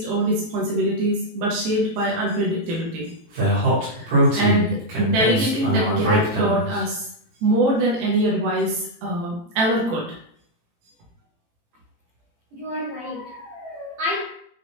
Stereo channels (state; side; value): late; left; 18 ms